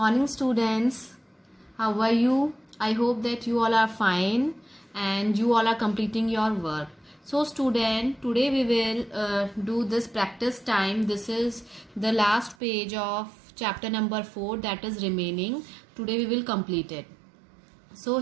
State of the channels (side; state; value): left; drops out; at 12.6 s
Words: Morning students, how are you? I hope that you all are fine and you all are completing your work. So student, today we will do this practice time. This is the last page of chapter number 4, that is remaining. Today we will complete it. So